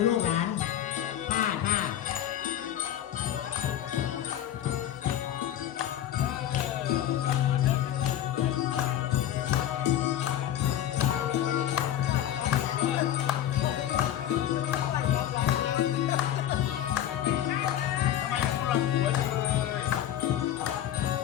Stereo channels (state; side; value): quieter; right; 11.3 dB